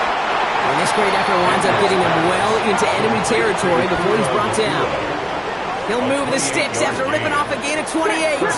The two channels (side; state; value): both; identical; correlation 1.00